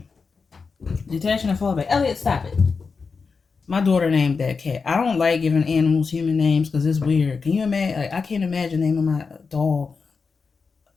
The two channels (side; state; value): right; quieter; 4.9 dB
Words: Detaching and fall back. Elliot, stop it. My daughter named that cat. I don't like giving animals human names because it's weird. Can you imagine? Like, I can't imagine naming my dog